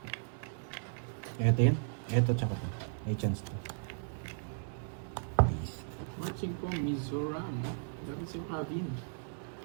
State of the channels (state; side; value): silent; left; 54 dB below the other